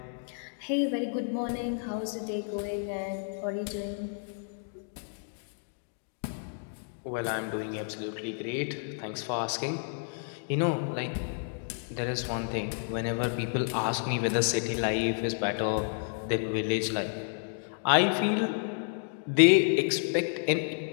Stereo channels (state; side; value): silent; right; digital silence